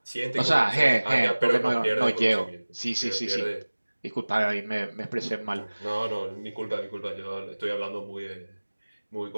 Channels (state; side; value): inverted; both; correlation -1.00